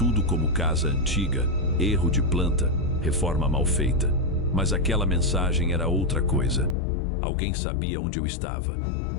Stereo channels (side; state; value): right; drops out; at 6.8 s